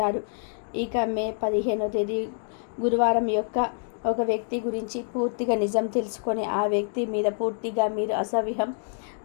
ఇక మే 15వ తేదీ గురువారం యొక్క ఒక వ్యక్తి గురించి పూర్తిగా నిజం తెలుసుకొని ఆ వ్యక్తి మీద పూర్తిగా మీరు అసహ్యం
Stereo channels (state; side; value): silent; right; digital silence